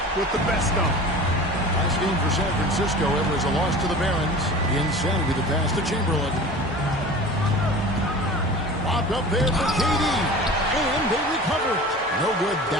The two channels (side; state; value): both; normal; correlation 0.38